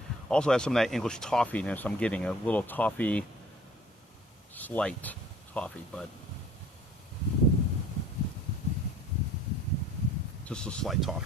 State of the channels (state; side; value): normal; both; correlation 0.52